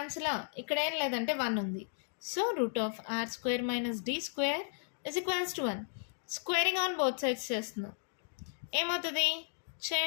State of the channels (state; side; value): silent; right; digital silence